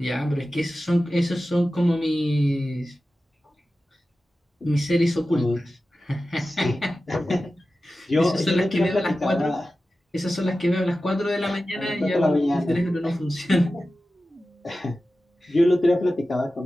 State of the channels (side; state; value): both; normal; correlation 0.94